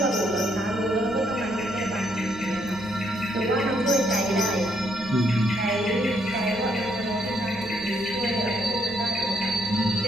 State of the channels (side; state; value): right; noise; rumble, 20 dB below the sound